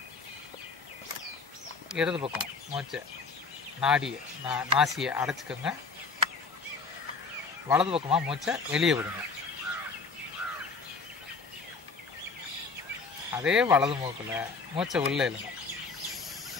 இடது பக்கம் மூச்சை நாசியை அடைச்சிக்கோங்க, வலது பக்கமாக மூச்சை வெளியே விடுங்க. அதே வலது மூக்கில் மூச்சை உள்ளே இழுங்க.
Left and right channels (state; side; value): quieter; right; 4.4 dB